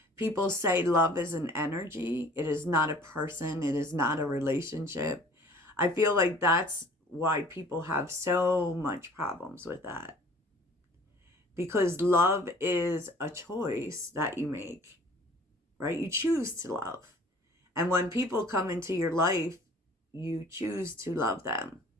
people say love is an energy, it is not a person, it is not a relationship. I feel like that's why people have so much problems with that. Because love is a choice that you make, right? You choose to love. And when people come into your life, you choose to love them.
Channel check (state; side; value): normal; both; correlation 0.51